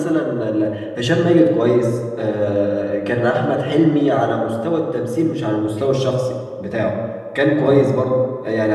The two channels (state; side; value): identical; both; correlation 1.00